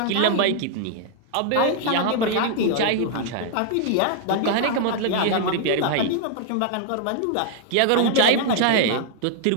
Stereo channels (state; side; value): different; both; correlation 0.00